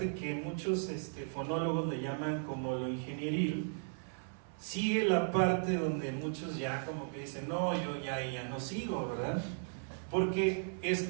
que muchos fonólogos le llaman como lo ingenieril, sigue la parte donde muchos ya como que dicen, no, yo ya no sigo, ¿verdad? Porque es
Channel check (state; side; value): silent; left; 54 dB below the other